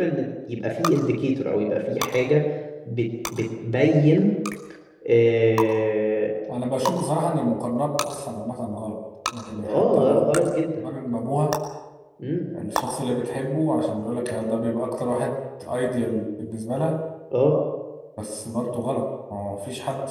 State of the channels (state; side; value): identical; both; correlation 1.00